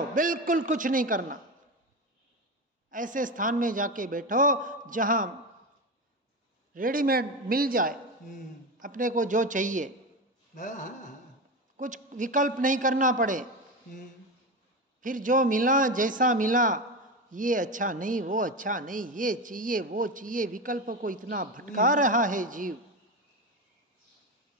बिल्कुल कुछ नहीं करना। ऐसे स्थान में जाके बैठो जहां रेडीमेड मिल जाए अपने को जो चाहिए, कुछ विकल्प नहीं करना पड़े। फिर जो मिला, जैसा मिला, ये अच्छा नहीं, वो अच्छा नहीं, ये चाहिए, वो चाहिए, विकल्प को इतना भटका रहा है जीव।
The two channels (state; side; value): normal; both; correlation 0.20